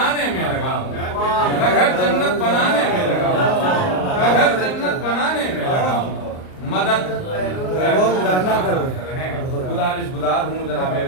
में लगा हूँ, मैं घर जन्नत बनाने में लगा हूँ, मैं घर जन्नत बनाने में लगा हूँ, मदद बहलोल दाना कर रहे हैं। गुजारिश गुजार हूँ जनाब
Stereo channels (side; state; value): right; late; 38 ms